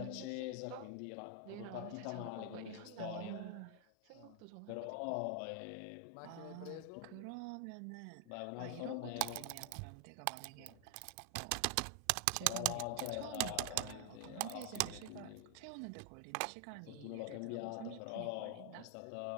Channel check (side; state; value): both; different; correlation 0.00